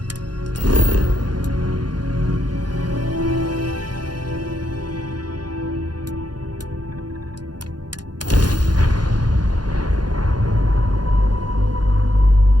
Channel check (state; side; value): late; left; 0.70 ms